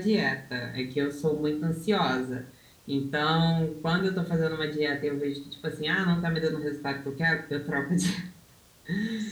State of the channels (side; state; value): both; identical; correlation 1.00